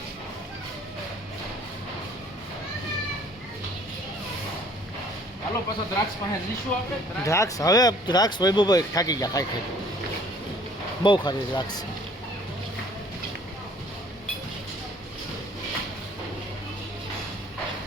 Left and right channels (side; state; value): both; normal; correlation 0.55